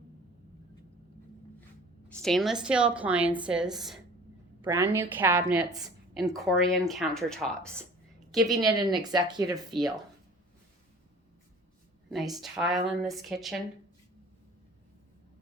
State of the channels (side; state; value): both; normal; correlation 0.46